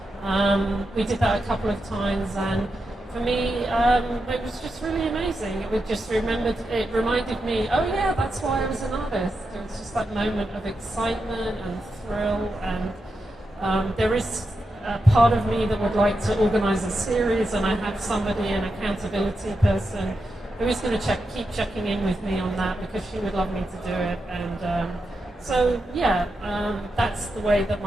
and we did that a couple of times, and for me, it was just really amazing. It reminded me, oh yeah, that's why I was an artist. It was just that moment of excitement and thrill, and there is a part of me that would like to organize a series, and I have somebody, an accountability person, who is going to keep checking in with me on that because she would love me to do it. And so yeah, that's the way that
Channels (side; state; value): both; normal; correlation 0.87